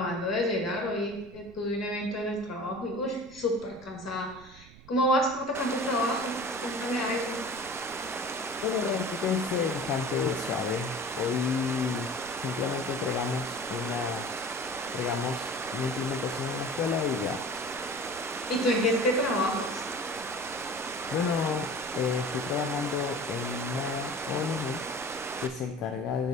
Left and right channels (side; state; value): right; noise; rumble, 21 dB below the sound